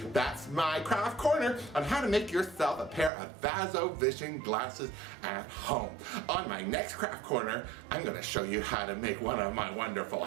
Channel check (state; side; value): drops out; left; at 3.1 s